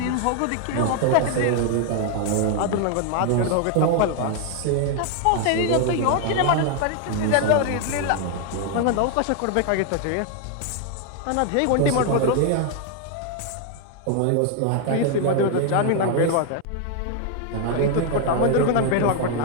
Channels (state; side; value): different; both; correlation 0.00